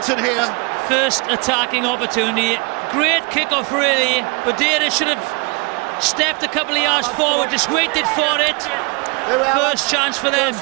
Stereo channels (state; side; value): quieter; left; 30.7 dB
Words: here. First attacking opportunity, great kick-off really. Baderas should have stepped a couple of yards forward, just waited for it. First chance for them,